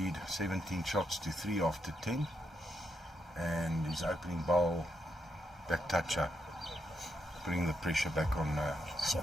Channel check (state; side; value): normal; both; correlation 0.81